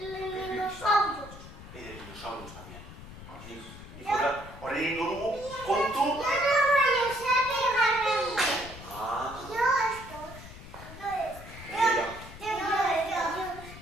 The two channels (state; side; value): noise; left; rumble, 15 dB below the sound